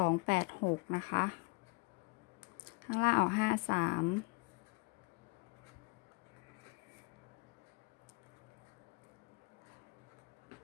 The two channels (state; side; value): quieter; right; 29.8 dB